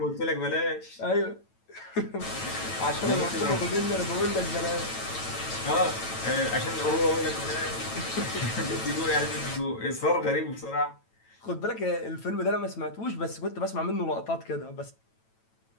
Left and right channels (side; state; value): right; late; 9.0 ms